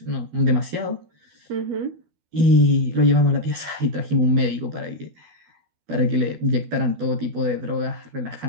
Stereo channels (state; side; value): late; left; 12 ms